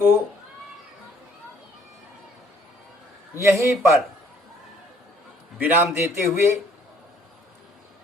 यहीं पर विराम देते हुए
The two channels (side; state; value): both; normal; correlation 0.61